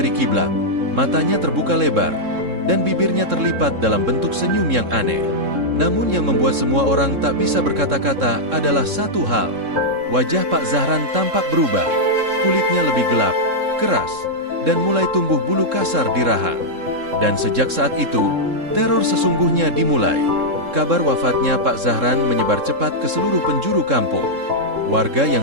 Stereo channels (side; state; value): left; late; 3.7 ms